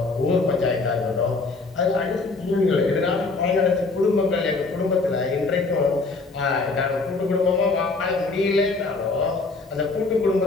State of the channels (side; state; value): right; quieter; 3.7 dB